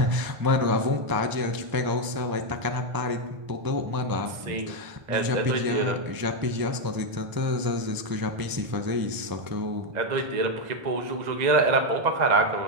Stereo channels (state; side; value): late; left; 1.0 ms